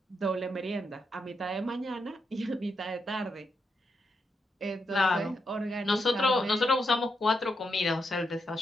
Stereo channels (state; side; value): normal; both; correlation 0.82